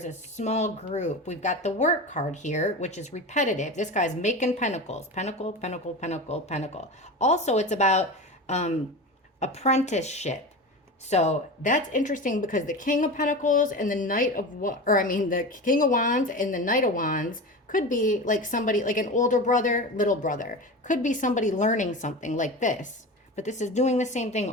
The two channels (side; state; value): both; normal; correlation 0.27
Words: a small group. We've got the work card here, which is repetitive. This guy's making pentacles. Pentacle, pentacle, pentacle, pentacle. Also, it's about apprenticeship. So that's interesting because the King of Pentacles and the Knight of the King of Wands and the Knight of Wands could be like somebody, like an older brother, little brother. Could be somebody learning something like this. But this is doing the same thing